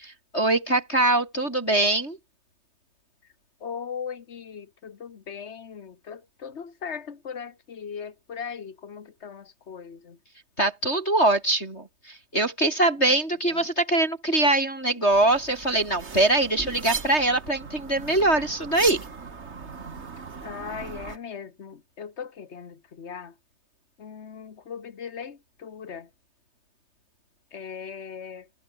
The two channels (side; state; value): right; late; 3.2 ms